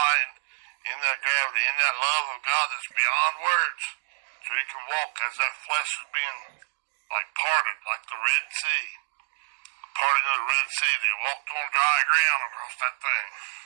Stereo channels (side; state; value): left; silent; digital silence